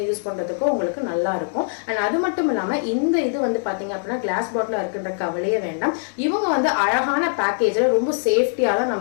யூஸ் பண்றதுக்கோ உங்களுக்கு நல்லா இருக்கும். அண்ட் அது மட்டும் இல்லாம இந்த இது வந்து பாத்தீங்க அப்படின்னா கிளாஸ் பாட்டில் இருக்குன்ற கவலையே வேண்டாம். இவங்க வந்து அழகான பேக்கேஜ்ல ரொம்ப சேஃப்டியா தான்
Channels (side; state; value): right; silent; digital silence